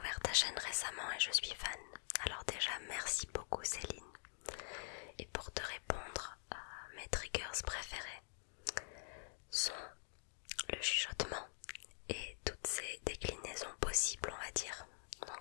ta chaîne récemment et je suis fan. Alors déjà, merci beaucoup Céline. Et pour te répondre, mes triggers préférés sont le chuchotement et toutes ses déclinaisons possibles, on va dire.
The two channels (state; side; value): silent; right; digital silence